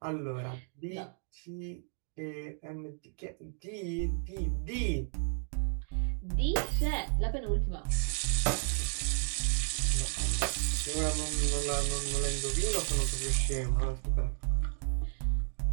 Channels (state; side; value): silent; left; digital silence